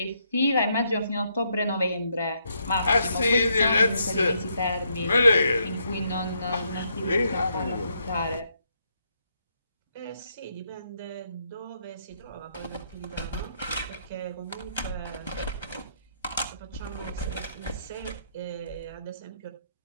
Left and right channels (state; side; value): inverted; both; correlation -0.75